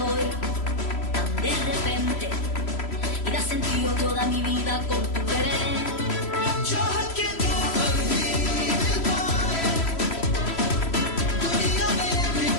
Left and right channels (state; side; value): late; right; 3.0 ms